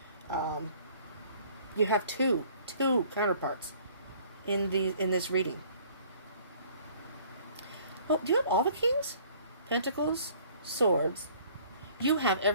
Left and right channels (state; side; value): inverted; both; correlation -0.55